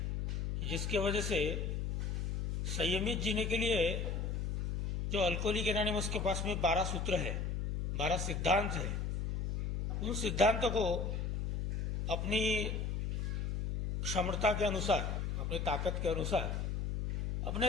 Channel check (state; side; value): noise; left; hum, 1 dB below the sound